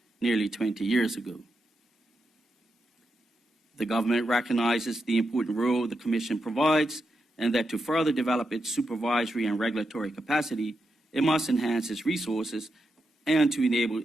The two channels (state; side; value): normal; both; correlation 0.85